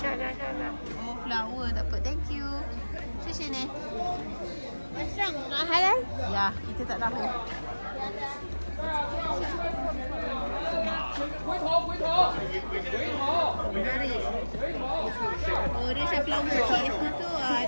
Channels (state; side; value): inverted; both; correlation -1.00